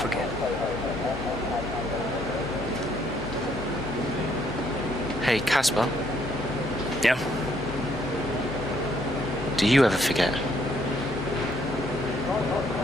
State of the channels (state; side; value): normal; both; correlation 0.68